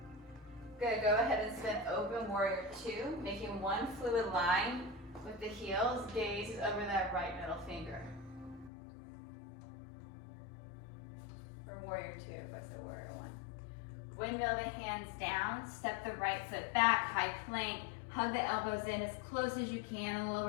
Good, go ahead and spin open warrior 2, making one fluid line with the heels. Gaze is over that right middle finger. Or warrior 2, if I said warrior 1. Windmill the hands down, step the right foot back, high plank, hug the elbows in as close as you can,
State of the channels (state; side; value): drops out; right; at 8.7 s